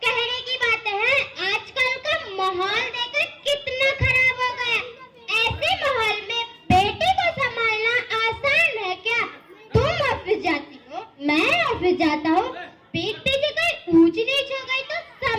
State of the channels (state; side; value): identical; both; correlation 1.00